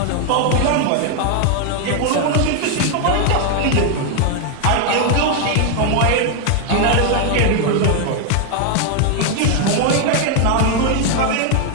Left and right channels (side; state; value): both; different; correlation 0.00